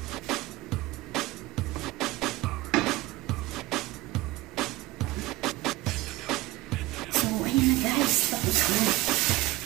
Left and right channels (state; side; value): quieter; left; 18.4 dB